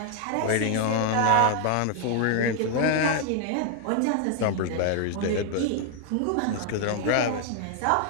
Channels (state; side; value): different; both; correlation 0.00